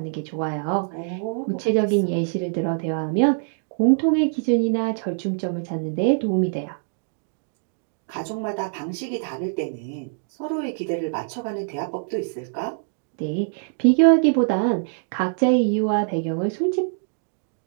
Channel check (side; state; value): left; silent; digital silence